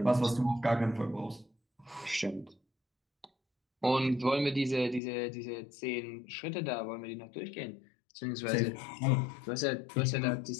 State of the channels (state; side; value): drops out; right; at 5.0 s